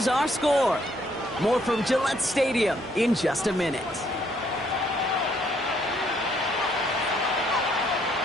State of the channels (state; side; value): normal; both; correlation 0.68